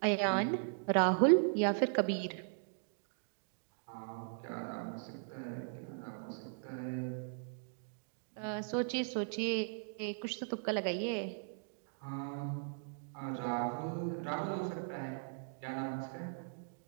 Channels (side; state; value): left; silent; digital silence